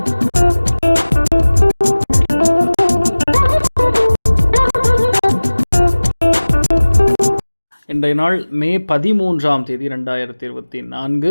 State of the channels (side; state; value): both; inverted; correlation -1.00